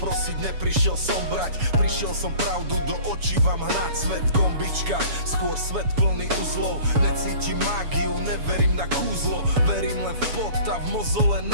neprišiel som brať. Prišiel som pravdu do očí vám hnať. Svet gombička, skôr svet plný uzlov. Necítim mágiu, neverím na kúzlo. Verím len v pot a v mozole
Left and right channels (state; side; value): late; left; 7.1 ms